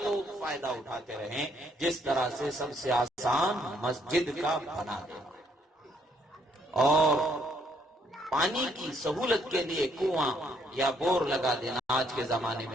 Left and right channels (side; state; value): both; normal; correlation 0.69